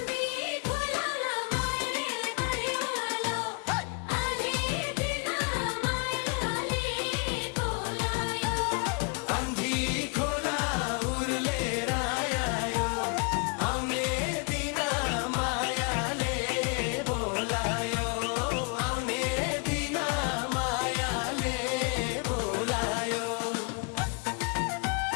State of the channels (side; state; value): right; quieter; 34.3 dB